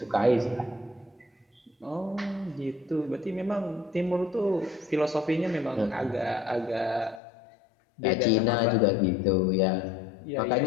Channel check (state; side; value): drops out; right; at 7.2 s